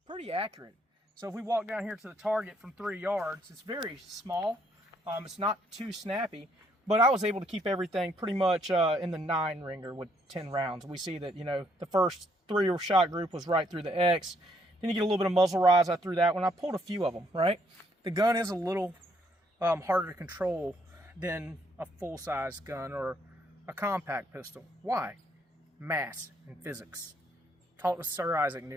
pretty accurate. So if we walk down here to the target from 3 yards, it's very small. It's not too snappy, but I was able to keep everything pretty much in the 9 ringer with 10 rounds. We see that, you know, the first 3 shot group was right through the X. Then you get a little bit of muzzle rise. I threw that one. I pulled a few of them, right? The gun is a little harder to control than a full-size gun or a compact pistol. Why? Mass and physics. Talked to Sir Isaac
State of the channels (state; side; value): normal; both; correlation 0.70